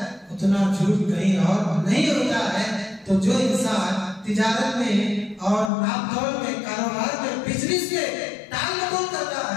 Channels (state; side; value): drops out; right; at 5.7 s